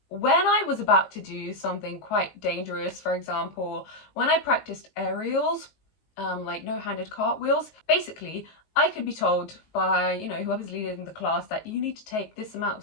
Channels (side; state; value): right; late; 19 ms